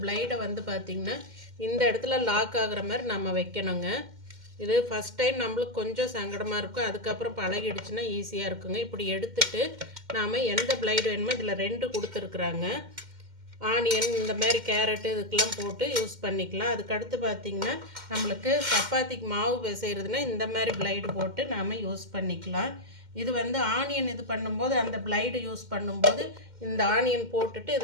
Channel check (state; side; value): late; left; 2.1 ms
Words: பிளைடை வந்து பார்த்திங்கன்னா இந்த இடத்துல லாக் ஆகிற மாதிரி நம்ம வைக்கணுங்க. இது ஃபஸ்ட் டைம் நம்மளுக்கு கொஞ்சம் சங்கடமாக இருக்கும், அதுக்கப்புறம் பழகிடுச்சுன்னா ஈஸியாக இருக்குங்க. இப்படி எடுத்துட்டு நாம் எந்த பிளைடு வேணுமோ இதில் 2 கொடுத்துருக்குறாங்க. ஆனியன் இந்த மாதிரி கேரட்டு இதுக்கெல்லாம் போட்டு யூஸ் பண்ணிக்கலாம். அதுக்கடுத்து பார்த்திங்கன்னா நம்மளுக்கு சப்பாத்திக்கு மாவு பிசைகிறதுனா இந்த மாதிரி பிளைடு போட்டு நாம் யூஸ் பண்ணிக்கலாம். இது வந்து ஆனியன் இது பண்ணும்போது அந்த பிளைடு யூஸ் பண்ணும்போது இந்த ஆனியன் போட்டுட்டு